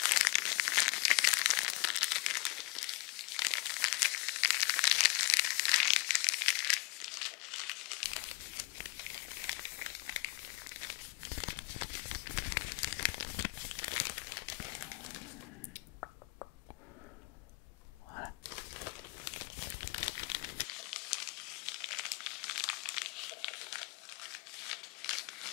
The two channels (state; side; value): quieter; right; 27.2 dB